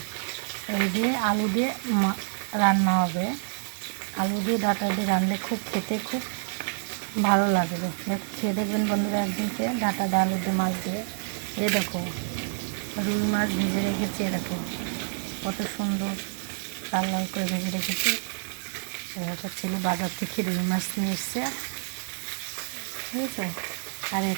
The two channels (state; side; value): silent; left; digital silence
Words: এই দিয়ে আলু দিয়ে রান্না হবে। আলু দিয়ে ডাঁটা দিয়ে রানলে খেতে খুব ভালো লাগবে। দেখো খেয়ে দেখবেন বন্ধুরা একদিনকে, ডাঁটা দিয়ে আলু দিয়ে মাছ দিয়ে। এই দেখো রুই মাছ ভেজে রেখেছি, দেখো কত সুন্দর লাল লাল করে ভেজে রেখেছি। এরকম ছেলে বাজার থেকে রুই মাছ নিয়ে এসছে, বুঝেছো। আর